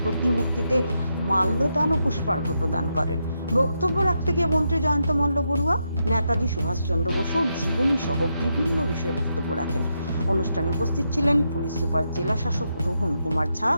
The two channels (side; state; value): both; inverted; correlation -0.83